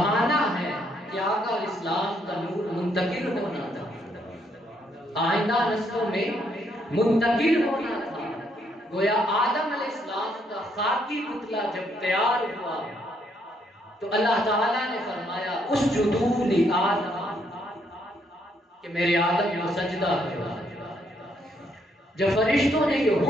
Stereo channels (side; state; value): both; normal; correlation 0.72